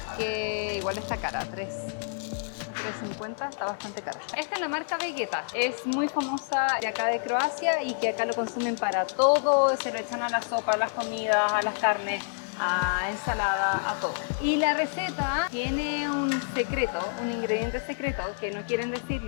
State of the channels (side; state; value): right; silent; digital silence